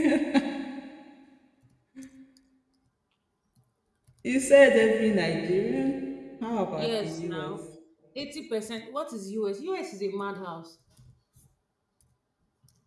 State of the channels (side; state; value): both; identical; correlation 1.00